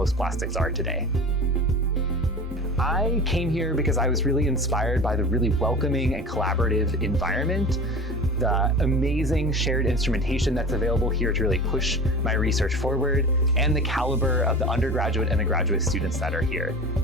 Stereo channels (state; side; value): normal; both; correlation 0.34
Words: plastics are today. I came here because I was really inspired by the really welcoming and collaborative environment, the amazing shared instrumentation that's available here to really push my research forward, and the caliber of the undergraduate and the graduate students that are here.